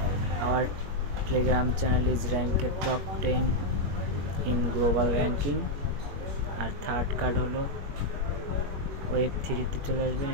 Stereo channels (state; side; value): late; left; 21 ms